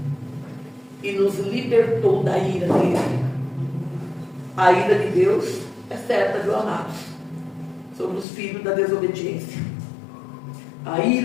e nos libertou da ira dele. A ira de Deus é certa, viu, amados? Sobre os filhos da desobediência. A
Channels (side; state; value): right; drops out; at 8.2 s